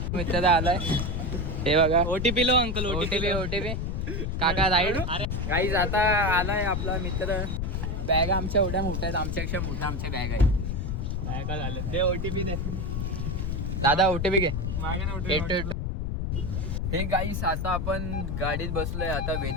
मित्र आलाय. हे बघा ओटीपी लो अंकल. ओटीपी काका राईड. गाईज आता आलाय आपला मित्र. बॅग आमच्या एवढ्या मोठ्या आहेत. आमच्यापेक्षा मोठ्या आमच्या बॅग आहेत. काय झालं दे ओटीपी दे दादा. ओटीपी घे. मागे हे गाईस आता आपण गाडीत बसलोय. आता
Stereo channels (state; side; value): noise; left; rumble, 2 dB below the sound